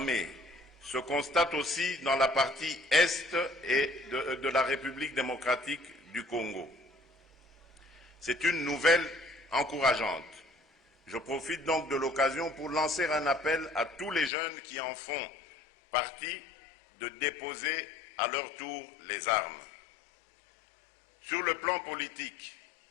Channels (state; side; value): drops out; right; at 14.3 s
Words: se constate aussi dans la partie est de la République démocratique du Congo. C'est une nouvelle encourageante. Je profite donc de l'occasion pour lancer un appel à tous les jeunes qui en font partie de déposer à leur tour les armes. Sur le plan politique,